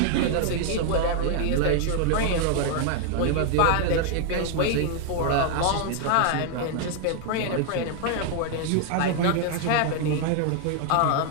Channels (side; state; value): both; different; correlation 0.00